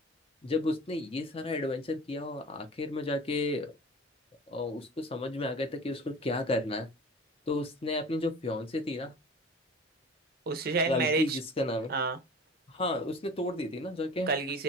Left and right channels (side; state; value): both; normal; correlation 0.39